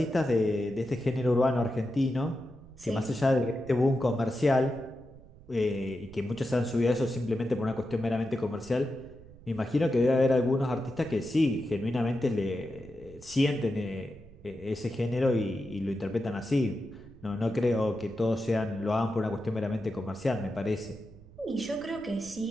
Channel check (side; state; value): right; noise; rumble, 21 dB below the sound